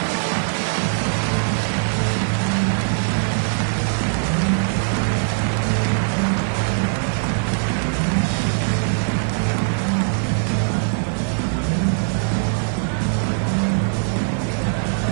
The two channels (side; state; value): left; silent; digital silence